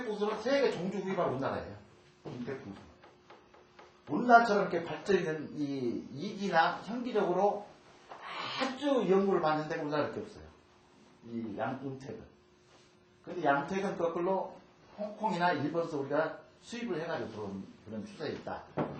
풍수는 세계 종주 구입할 우리나라예요. 음택 풍수. 우리나라처럼 이렇게 발전이 된 이 이기나 현기적으로 아주 연구를 받는 데가 우리나라밖에 없어요. 이 음택은. 근데 양택은 거꾸로 홍콩이나 일본에서 우리가 수입을 해가지고 들어온 그런 추세에 있다.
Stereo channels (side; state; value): both; identical; correlation 1.00